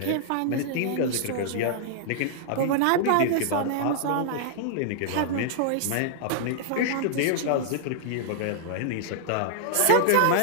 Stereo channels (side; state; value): both; different; correlation -0.01